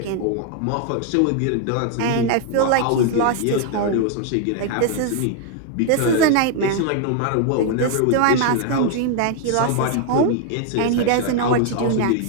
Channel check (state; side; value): different; both; correlation 0.00